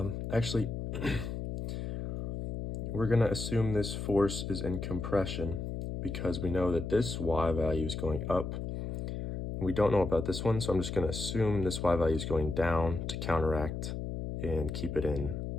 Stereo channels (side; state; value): left; noise; hum, 4 dB below the sound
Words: actually, we're going to assume this force is in compression because we know that this y value is going up. We don't know about this one, so I'm just going to assume this y value is going down to counteract and keep it in